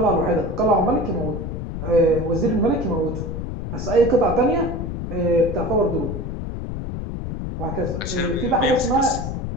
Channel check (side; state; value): left; noise; rumble, 5 dB below the sound